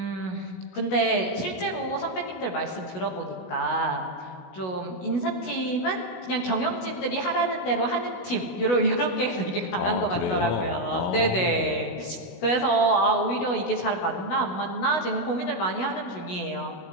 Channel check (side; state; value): right; late; 16 ms